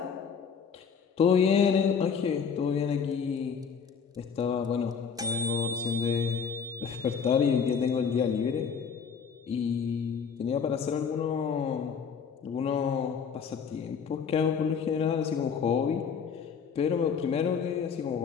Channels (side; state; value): right; quieter; 6.5 dB